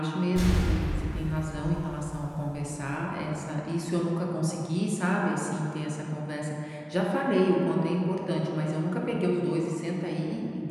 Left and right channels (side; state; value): both; identical; correlation 1.00